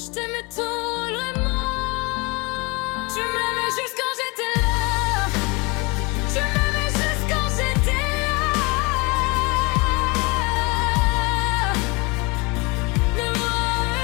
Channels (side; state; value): right; quieter; 27.3 dB